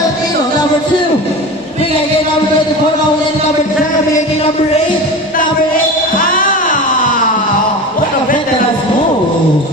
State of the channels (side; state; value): both; normal; correlation 0.30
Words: Number 2. Bigay kay number 24. Nawala ni number 10. Bigay kay number 8. What a veteran move.